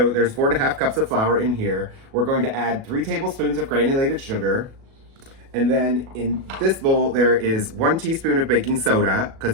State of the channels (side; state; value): left; late; 37 ms